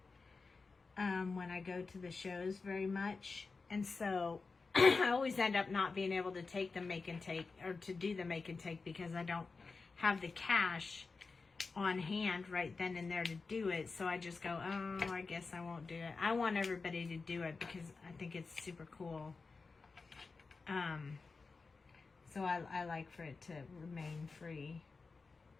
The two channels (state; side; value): quieter; right; 4.3 dB